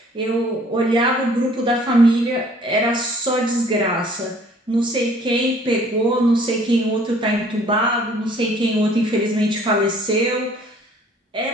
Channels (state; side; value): normal; both; correlation 0.56